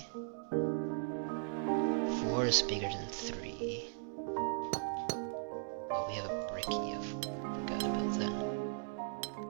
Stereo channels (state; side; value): silent; left; digital silence